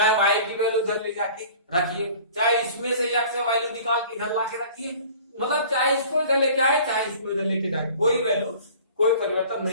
y की वैल्यू इधर ले जाके रखिए, चाहे इसमें से x से वैल्यू निकाल के इधर लाके रखिए, मतलब चाहे इसको इधर लेके आए चाहे इसको इधर लेके जाए, कोई वैल्यू कोई परिवर्तन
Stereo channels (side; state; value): both; inverted; correlation -0.46